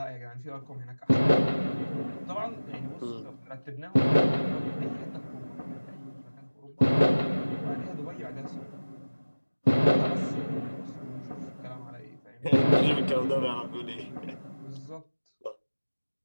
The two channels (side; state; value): both; inverted; correlation -1.00